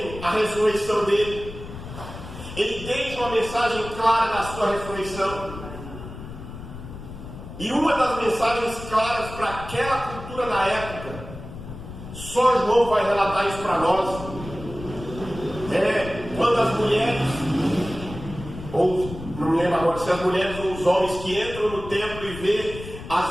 a ressurreição dele. Ele deixa uma mensagem clara da sua ressurreição. E uma das mensagens claras para aquela cultura da época, só João vai relatar isso para nós, quando as mulheres, ou não me lembro agora se as mulheres ou os homens que entram no templo e vê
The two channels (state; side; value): noise; left; rumble, 12 dB below the sound